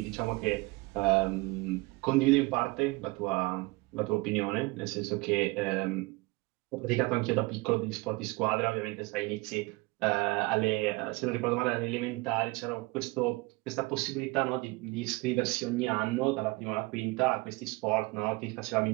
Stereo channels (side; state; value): left; quieter; 24.3 dB